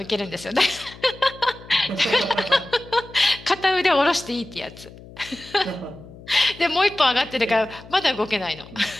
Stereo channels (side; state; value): left; noise; hum, 19 dB below the sound